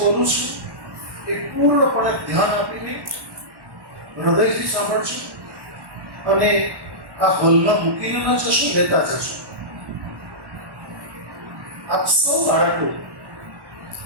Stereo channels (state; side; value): late; left; 1.1 ms